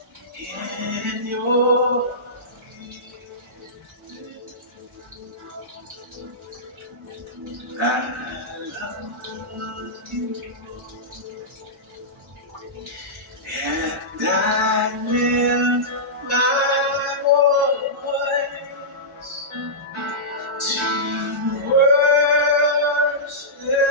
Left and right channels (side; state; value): both; normal; correlation -0.15